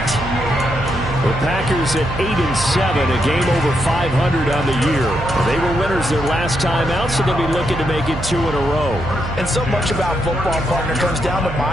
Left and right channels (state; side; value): noise; right; hum, 8 dB below the sound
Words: The Packers at 8-7, a game over 500 on the year. They were winners their last time out, so they'll be looking to make it 2 in a row. And so much about football, partner, comes down to